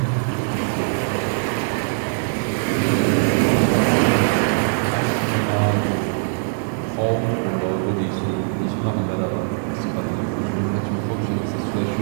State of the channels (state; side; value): silent; left; digital silence